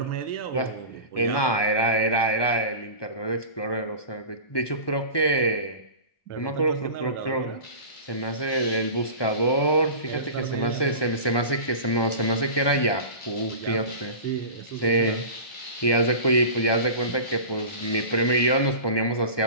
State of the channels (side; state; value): right; late; 1.2 ms